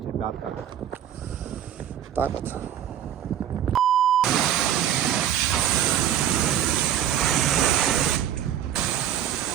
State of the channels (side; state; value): left; quieter; 10.4 dB